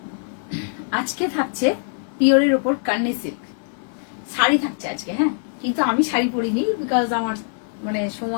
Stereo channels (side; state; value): right; silent; 57 dB below the other